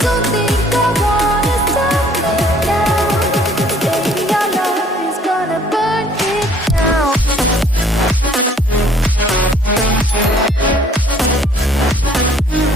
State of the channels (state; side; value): normal; both; correlation 0.58